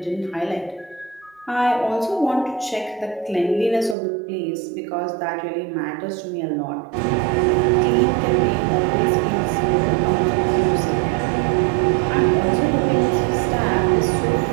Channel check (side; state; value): left; drops out; at 4.0 s